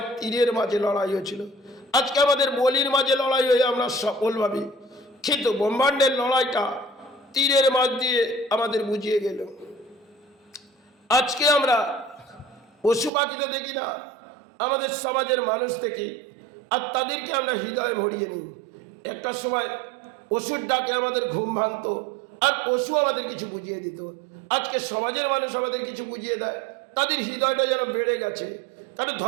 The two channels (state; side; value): drops out; left; at 13.1 s